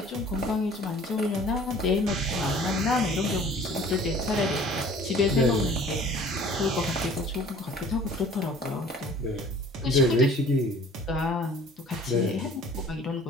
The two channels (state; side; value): normal; both; correlation 0.50